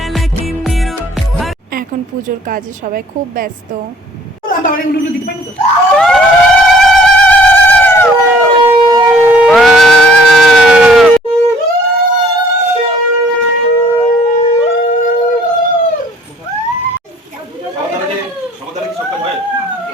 की नीरो। এখন পুজোর কাজে সবাই খুব ব্যস্ত। তাহলে উলুলু দিতে পারি তো?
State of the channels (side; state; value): both; normal; correlation 0.57